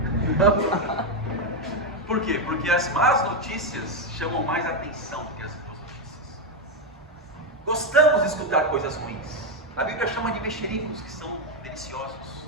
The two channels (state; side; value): normal; both; correlation 0.05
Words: Por quê? Porque as más notícias chamam mais atenção do que as boas notícias. Gostamos de escutar coisas ruins. A Bíblia chama de mexericos, que são deliciosos.